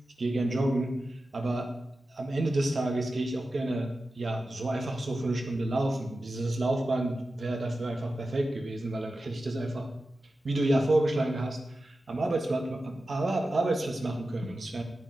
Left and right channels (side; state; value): both; normal; correlation 0.93